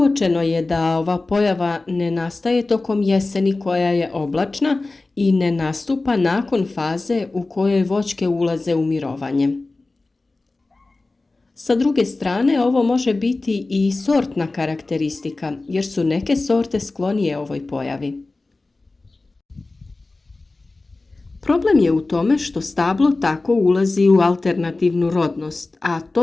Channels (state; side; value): quieter; right; 3.3 dB